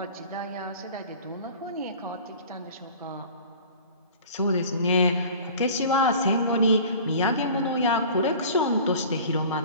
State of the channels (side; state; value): both; inverted; correlation -0.43